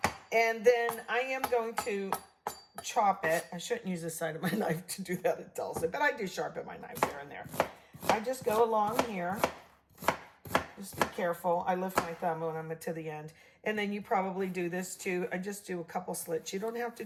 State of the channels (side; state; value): both; identical; correlation 1.00